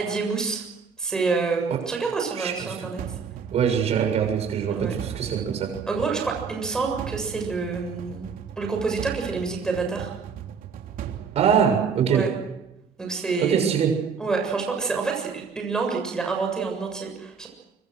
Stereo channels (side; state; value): left; quieter; 5.8 dB